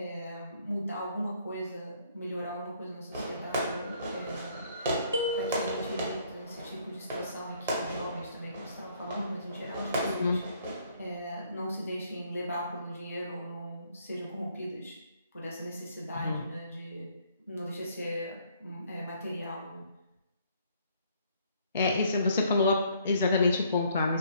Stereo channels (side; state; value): both; inverted; correlation -0.65